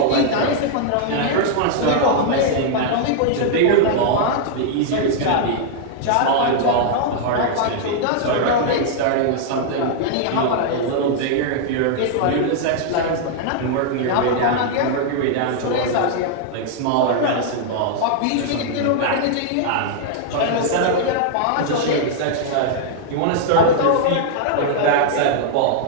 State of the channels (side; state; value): both; different; correlation -0.01